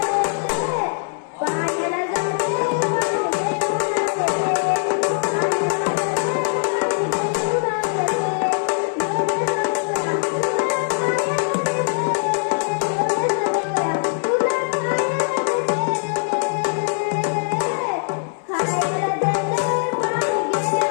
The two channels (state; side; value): silent; right; digital silence